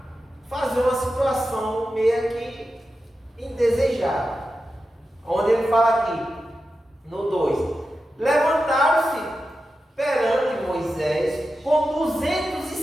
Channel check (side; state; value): both; normal; correlation 0.91